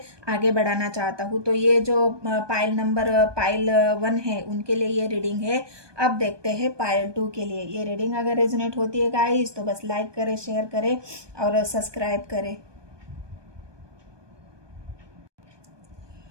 आगे बढ़ाना चाहता हूँ। तो ये जो पाइल 1 है उनके लिए ये रीडिंग है। अब देखते हैं पाइल 2 के लिए। ये रीडिंग अगर रेजोनेट होती है गाइस तो बस लाइक करें, शेयर करें और सब्सक्राइब करें।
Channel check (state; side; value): late; left; 1.2 ms